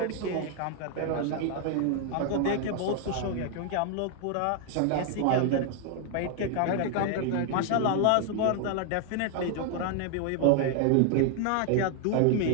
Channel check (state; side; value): different; both; correlation 0.00